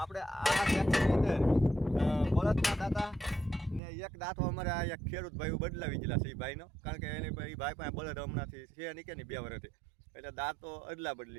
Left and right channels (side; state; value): left; drops out; at 3.8 s